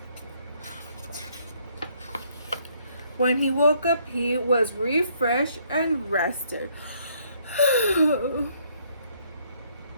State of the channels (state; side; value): inverted; both; correlation -0.67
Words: When he woke up, he was refreshed and rested.